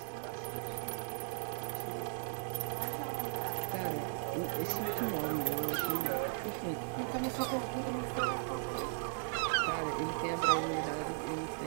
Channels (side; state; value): left; silent; digital silence